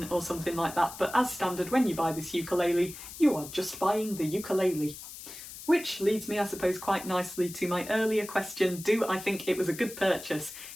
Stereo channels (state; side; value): noise; left; hiss, 13 dB below the sound